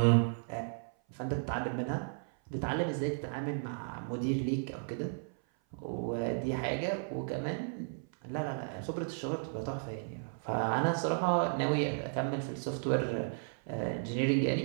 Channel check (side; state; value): left; silent; 55 dB below the other